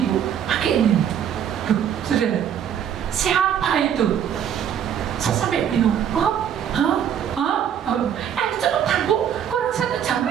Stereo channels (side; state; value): left; quieter; 9.0 dB